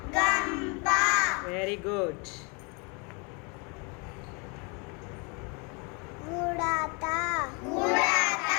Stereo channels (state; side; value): quieter; right; 32.7 dB